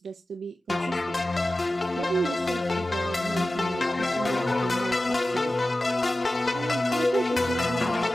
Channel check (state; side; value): normal; both; correlation 0.95